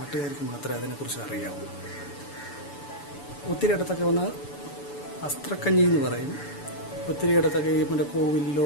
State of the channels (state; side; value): late; right; 7.0 ms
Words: മാത്രമേ അതിനെക്കുറിച്ച് അറിയാവൂ. ഒത്തിരി ഇടത്തൊക്കെ ഒന്ന് അസ്ത്രക്കഞ്ഞി എന്ന് പറയും. ഒത്തിരി ഇടത്തൊക്കെ ഈ മറ്റേ